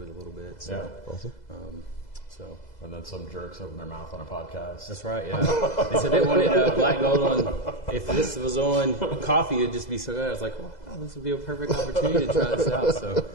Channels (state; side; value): late; right; 2.0 ms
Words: a little bit. So, yeah, awesome. And then some jerks open their mouth on a podcast. That's right, yeah. They said they wanted Black Gold on, if this was on coffee, it'd just be so good. I was like, wow, this would be a perfect opportunity to try this out. So